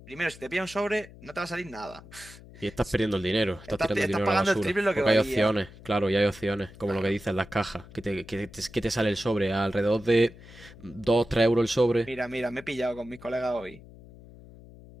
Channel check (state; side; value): noise; left; hum, 20 dB below the sound